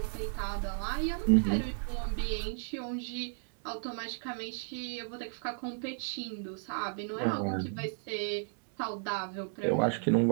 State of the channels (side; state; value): left; silent; digital silence